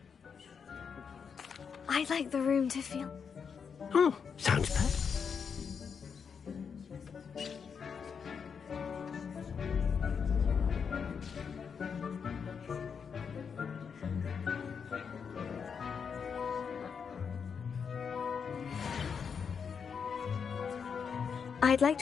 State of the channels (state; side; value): quieter; right; 6.4 dB